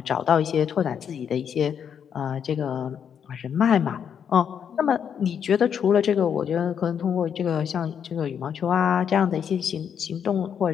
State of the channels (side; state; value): right; quieter; 7.9 dB